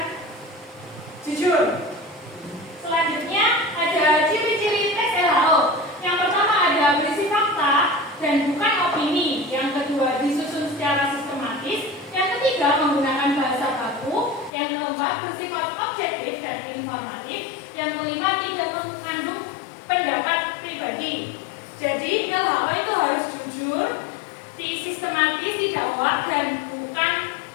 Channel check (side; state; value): right; drops out; at 14.5 s